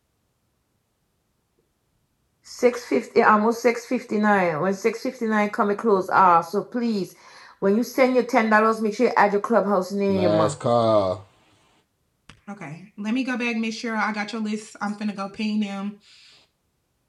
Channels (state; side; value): identical; both; correlation 1.00